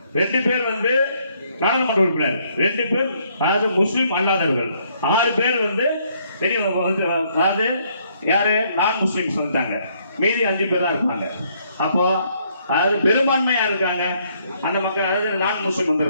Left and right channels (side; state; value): both; inverted; correlation -0.69